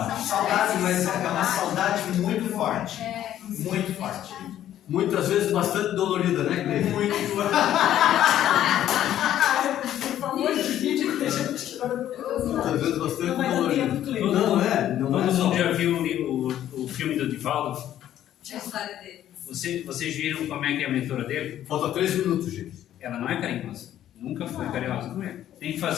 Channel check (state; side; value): quieter; right; 11.8 dB